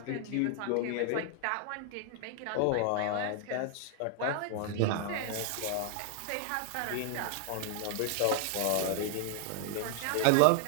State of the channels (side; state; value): both; different; correlation 0.00